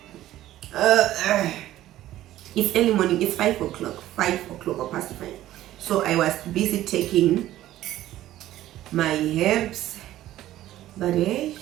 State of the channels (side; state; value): left; quieter; 14.1 dB